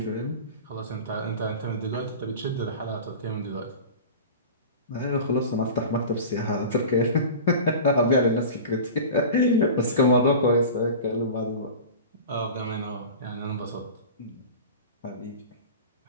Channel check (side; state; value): both; inverted; correlation -0.35